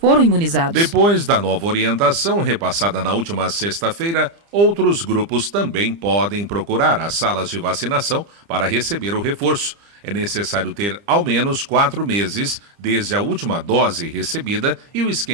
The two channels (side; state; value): left; late; 30 ms